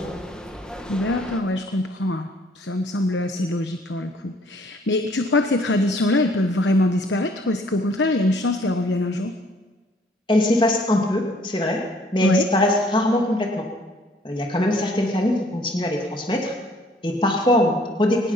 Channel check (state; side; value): normal; both; correlation 0.60